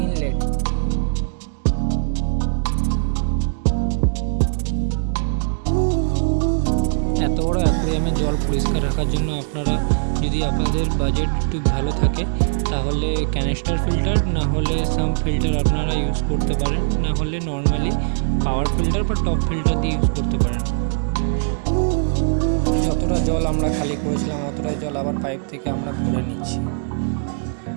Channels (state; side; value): silent; left; digital silence